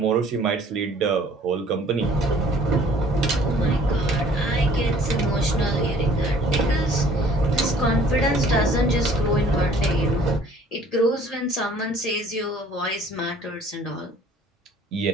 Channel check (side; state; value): both; normal; correlation 0.54